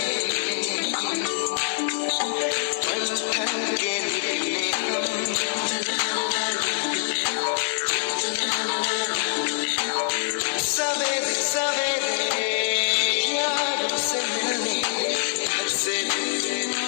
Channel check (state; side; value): silent; right; digital silence